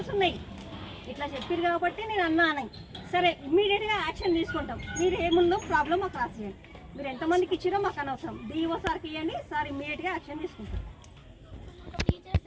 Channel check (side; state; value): both; identical; correlation 1.00